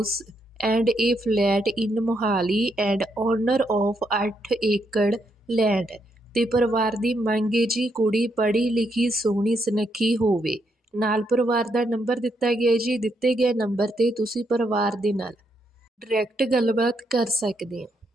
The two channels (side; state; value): both; normal; correlation 0.77